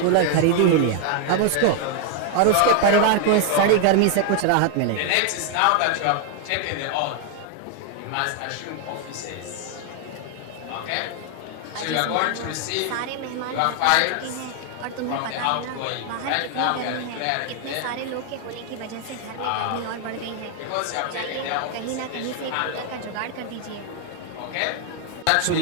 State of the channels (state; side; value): different; both; correlation 0.00